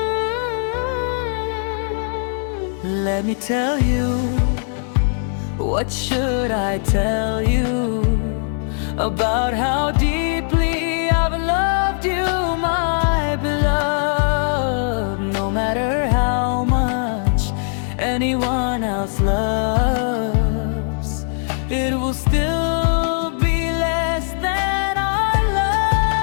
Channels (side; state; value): right; silent; digital silence